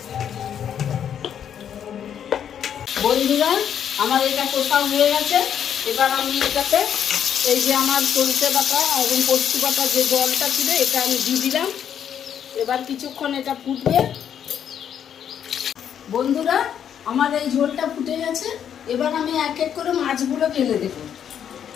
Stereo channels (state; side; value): quieter; right; 8.9 dB